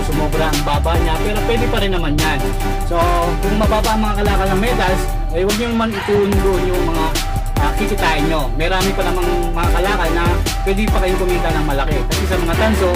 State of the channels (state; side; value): identical; both; correlation 1.00